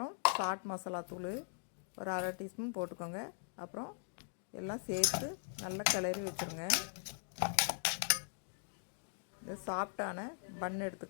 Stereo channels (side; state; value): right; silent; digital silence